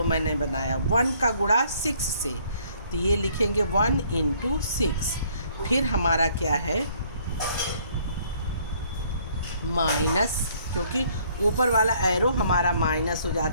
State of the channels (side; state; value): both; inverted; correlation -0.62